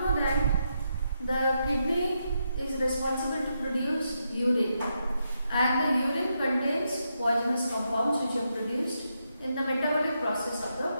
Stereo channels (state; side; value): inverted; both; correlation -0.82